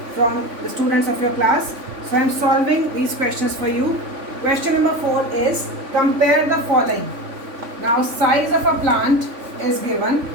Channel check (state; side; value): late; left; 3.5 ms